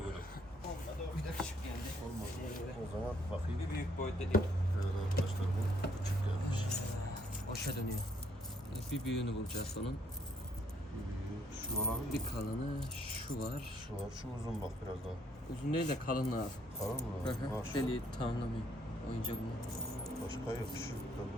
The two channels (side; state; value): both; normal; correlation 0.68